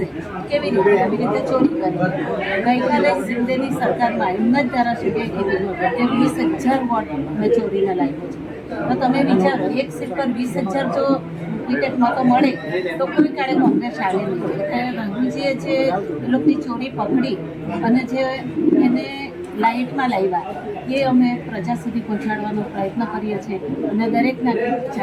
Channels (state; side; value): identical; both; correlation 1.00